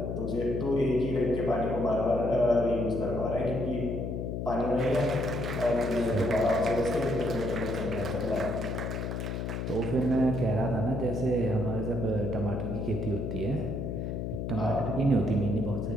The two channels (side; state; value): left; noise; hum, 3 dB below the sound